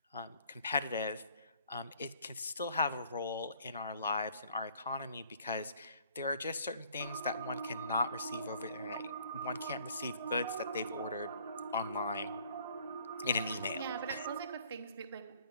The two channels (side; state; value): both; inverted; correlation -0.58